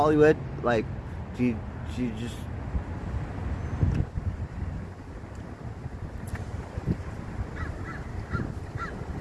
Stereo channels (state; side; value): identical; both; correlation 1.00